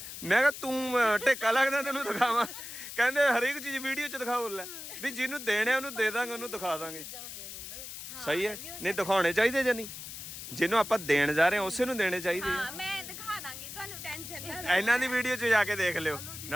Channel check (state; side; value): noise; left; hiss, 10 dB below the sound